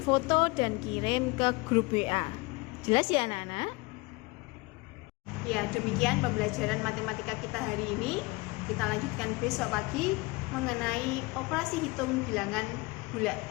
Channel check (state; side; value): quieter; right; 24.6 dB